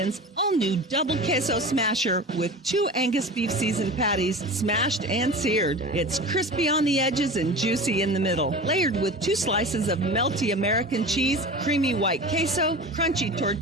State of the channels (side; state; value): both; normal; correlation 0.33